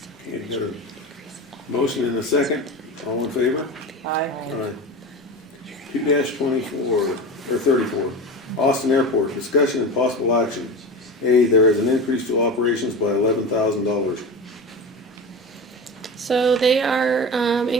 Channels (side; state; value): both; normal; correlation 0.27